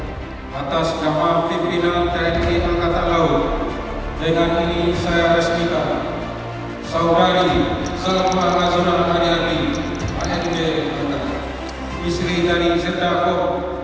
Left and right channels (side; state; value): both; identical; correlation 1.00